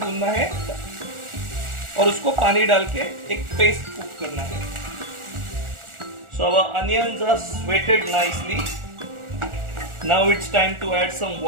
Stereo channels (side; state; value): left; late; 1.4 ms